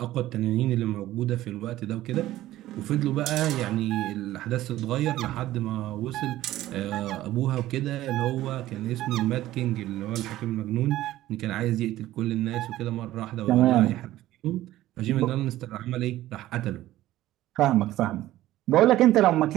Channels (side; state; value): left; quieter; 15.0 dB